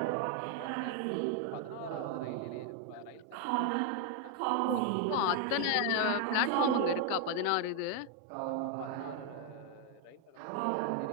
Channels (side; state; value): both; different; correlation 0.01